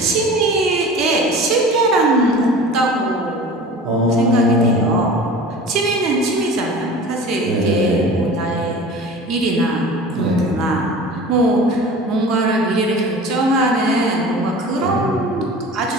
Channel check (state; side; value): normal; both; correlation 0.39